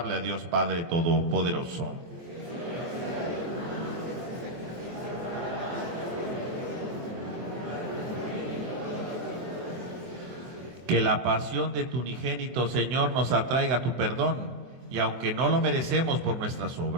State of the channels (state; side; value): late; left; 24 ms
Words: a Dios Padre Todopoderoso. Que la pasión de tu unigénito, Señor, nos atraiga a tu perdón, y aunque no lo merecemos por nuestras